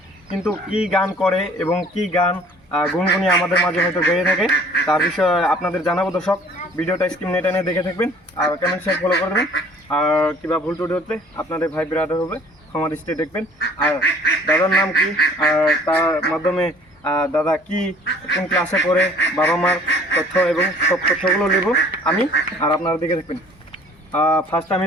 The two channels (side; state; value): both; normal; correlation 0.53